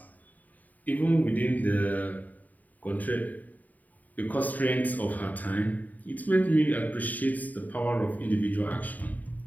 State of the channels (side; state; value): right; late; 0.078 ms